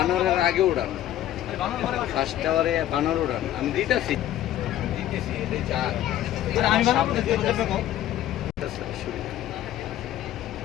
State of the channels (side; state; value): right; quieter; 12.7 dB